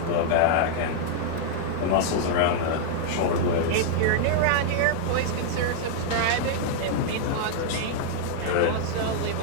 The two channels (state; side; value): different; both; correlation -0.01